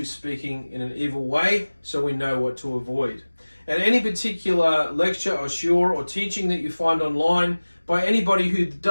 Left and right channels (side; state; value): both; inverted; correlation -1.00